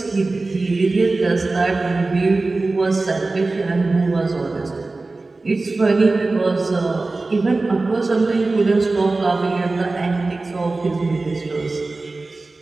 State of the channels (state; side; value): quieter; left; 3.4 dB